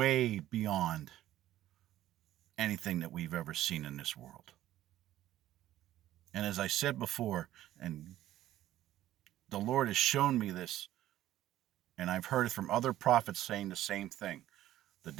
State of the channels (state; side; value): quieter; left; 13.6 dB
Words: beyond anything that we've ever seen in this world. And as I said before, and the Lord has shown me this, and I've heard it from other prophets saying the same thing. The